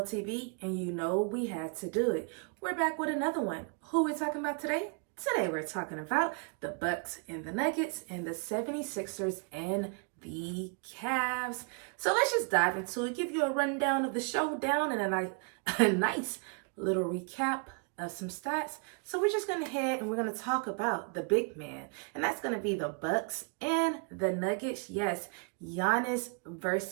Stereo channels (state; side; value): quieter; left; 38.0 dB